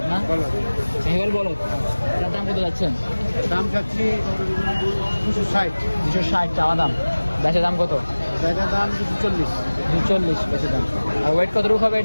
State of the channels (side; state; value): both; inverted; correlation -1.00